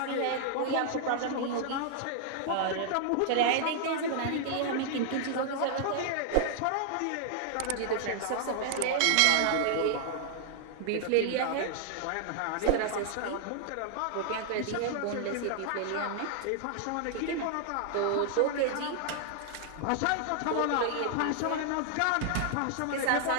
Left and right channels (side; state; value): both; different; correlation -0.01